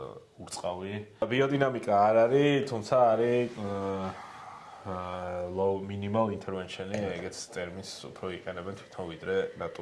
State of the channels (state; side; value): identical; both; correlation 1.00